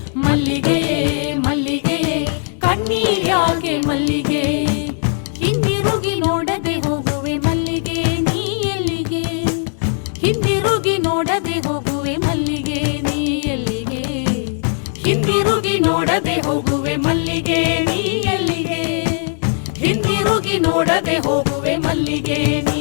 ಮಲ್ಲಿಗೆ ಮಲ್ಲಿಗೆ ಕಣ್ಣೀರ್ಯಾಕೆ ಮಲ್ಲಿಗೆ ಹಿಂದಿರುಗಿ ನೋಡದೆ ಹೋಗುವೆ ಮಲ್ಲಿಗೆ ನೀ ಎಲ್ಲಿಗೆ ಹಿಂದಿರುಗಿ ನೋಡದೆ ಹೋಗುವೆ ಮಲ್ಲಿಗೆ ನೀ ಎಲ್ಲಿಗೆ ಹಿಂದಿರುಗಿ ನೋಡದೆ ಹೋಗುವೆ ಮಲ್ಲಿಗೆ ನೀ ಎಲ್ಲಿಗೆ ಹಿಂದಿರುಗಿ ನೋಡದೆ ಹೋಗುವೆ ಮಲ್ಲಿಗೆ ನೀ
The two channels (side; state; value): right; silent; 67 dB below the other